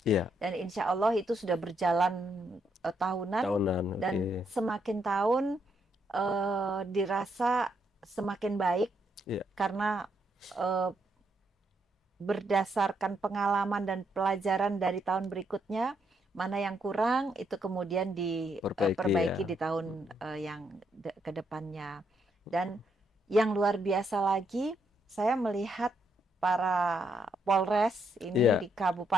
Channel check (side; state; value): both; normal; correlation 0.76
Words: iya, Dan insya Allah itu sudah berjalan tahunan, tahunan. dan Oke. semakin tahun dirasa semakin baik Iya, karena berdasarkan pengalaman dan pelajaran dari tahun berikutnya, mana yang kurang itu kemudian perbaiki diperbaiki ya. di tahun yang ke depannya. Dan yang luar biasa lagi, saya melihat para Polres ini Iya, di